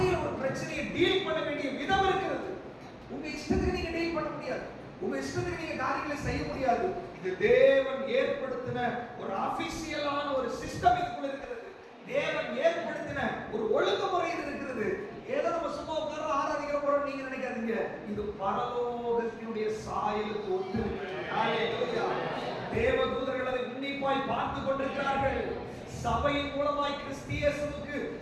ஒரு பிரச்சனையை டீல் பண்ண வேண்டிய விதம் இருக்கிறது. உங்க இஷ்டத்துக்கு நீங்க டீல் பண்ண முடியாது, உங்க இஷ்டத்துக்கு நீங்க காரியங்களை செய்ய முடியாது. இது தேவன் ஏற்படுத்தின ஒரு ஆபீஷியலான ஒரு சிஸ்டம் இதுக்குள்ள இருக்கிறது. தேவன் ஏற்படுத்தின ஒரு ஒழுங்குமுறை இது இருக்கிறது. ஏதோ நம்ம சும்மா உட்கார்ந்து ஆராதிக்கிற போறோம் நீங்க நினைக்காதீங்க. இது பரலோகத்தினுடைய சாயலுக்கு ஒத்து இருக்கிறது. ஹalleluya. தேவதூதர்கள் அதை உன்னிப்பாய் பார்த்து கொண்டிருக்கிறார்கள். சபையின் மூலமாய் கிறிஸ்தியேசுவுக்கு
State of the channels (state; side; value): identical; both; correlation 1.00